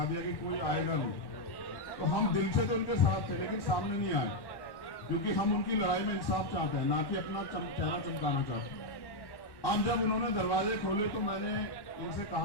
दिया कि कोई आएगा नहीं। तो हम दिल से तो उनके साथ थे, लेकिन सामने नहीं आए, क्योंकि हम उनकी लड़ाई में इंसाफ चाहते हैं, ना कि अपना चेहरा चमकाना चाहते हैं। अब जब उन्होंने दरवाजे खोले तो मैंने इनसे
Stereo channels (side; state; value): right; late; 1.1 ms